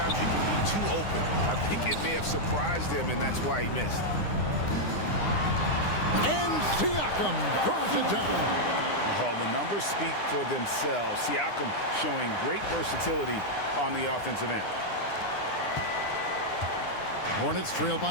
you can be too open. I think it may have surprised him, and that's why he missed. And Siakam throws it down. Oh, the numbers speak for themselves. Siakam showing great versatility on the offensive end. Hornets trail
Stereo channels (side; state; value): right; late; 9.8 ms